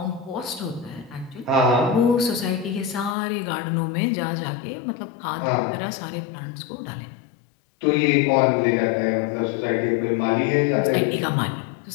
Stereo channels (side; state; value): right; drops out; at 3.2 s